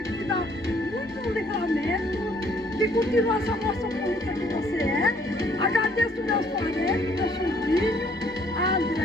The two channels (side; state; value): both; normal; correlation 0.63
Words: que te dá muito livramento, que continua essa moça bonita que você é. Agradeço meus parentes, meu sobrinho, a